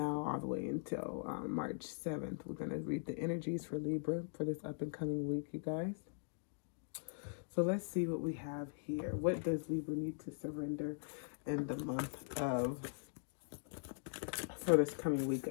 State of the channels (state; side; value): silent; right; digital silence